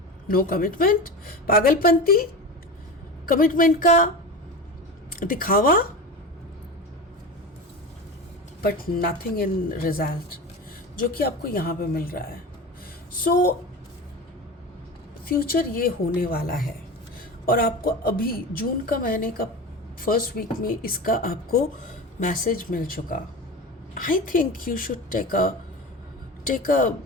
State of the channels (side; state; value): both; normal; correlation 0.28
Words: नो कमिटमेंट, पागलपंती, कमिटमेंट का दिखावा, बट नथिंग इन रिजल्ट, जो कि आपको यहाँ पे मिल रहा है। सो फ्यूचर ये होने वाला है, और आपको अभी जून का महीने का फर्स्ट वीक में इसका आपको मैसेज मिल चुका। I think you should take a